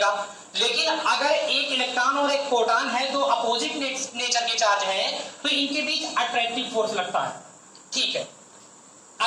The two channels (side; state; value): both; identical; correlation 1.00